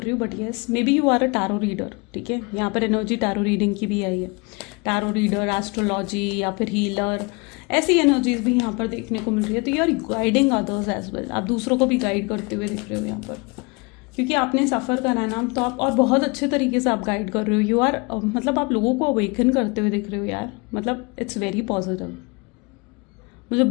रही हूँ, but yes maybe you are a tarot reader. ठीक है, यहाँ पर एनर्जी टैरो रीडिंग की भी आई है। टैरो रीडर, एस्ट्रोलॉजी या फिर हीलर, ऐसी एनर्जीज भी यहाँ पर देखने को मिल रही है। तो you are guiding others as well, आप दूसरों को भी गाइड करते हुए दिख रहे हो यहाँ पर, क्योंकि आपने सफ़र करा है ना, तो आप और बहुत अच्छे तरीके से आप गाइड कर रहे हो। यू आर मतलब आप लोगों को अवेकन करते हुए दिख रहे हो यार, मतलब इट्स वेरी पॉजिटिव। मुझे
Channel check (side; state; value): right; quieter; 29.1 dB